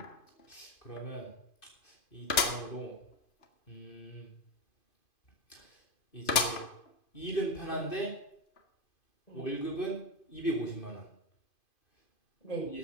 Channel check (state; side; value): late; right; 2.5 ms